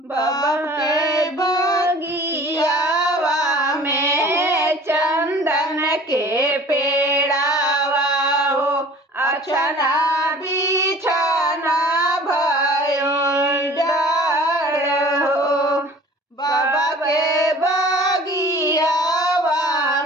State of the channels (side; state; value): both; normal; correlation 0.46